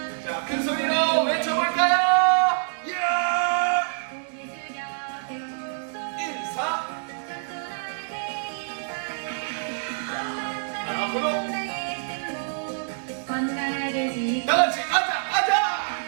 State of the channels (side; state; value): left; silent; digital silence